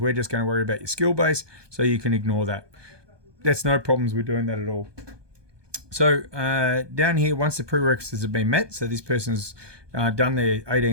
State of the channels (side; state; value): left; late; 1.2 ms